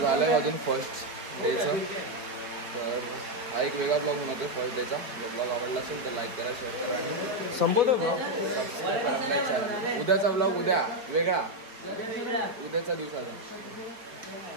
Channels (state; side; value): late; left; 4.6 ms